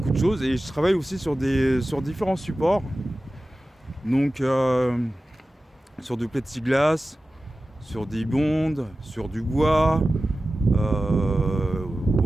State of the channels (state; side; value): normal; both; correlation 0.95